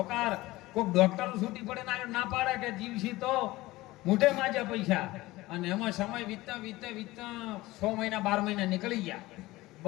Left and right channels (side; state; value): right; quieter; 19.0 dB